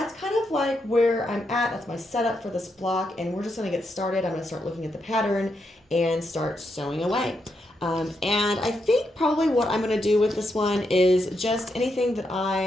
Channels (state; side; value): normal; both; correlation 0.82